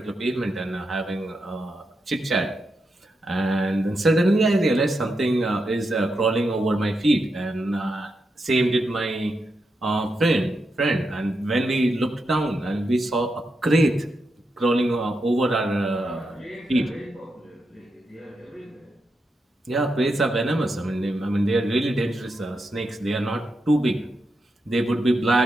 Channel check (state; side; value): normal; both; correlation 0.86